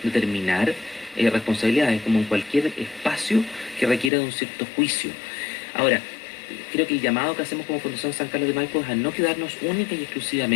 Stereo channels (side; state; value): right; drops out; at 4.1 s